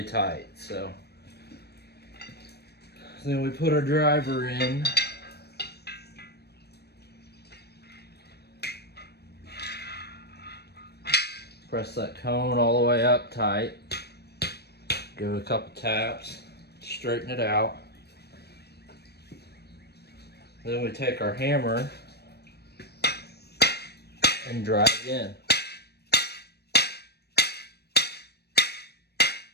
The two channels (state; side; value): late; right; 0.47 ms